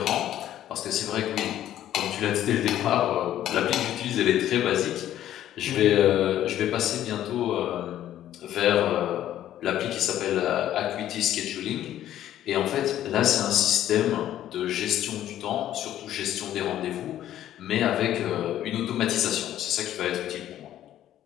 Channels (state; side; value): quieter; right; 12.1 dB